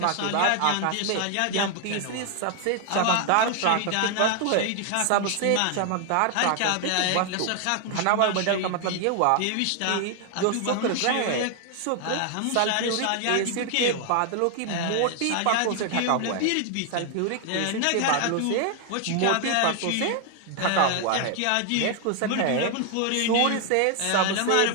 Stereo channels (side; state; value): both; different; correlation 0.00